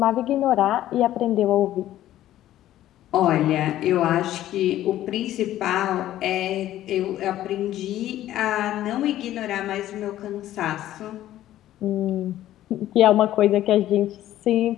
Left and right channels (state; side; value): quieter; right; 13.4 dB